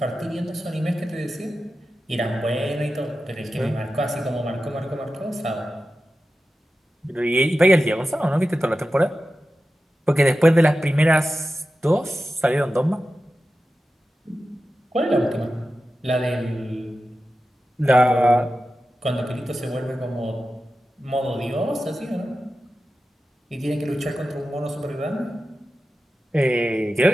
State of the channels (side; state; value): both; normal; correlation 0.93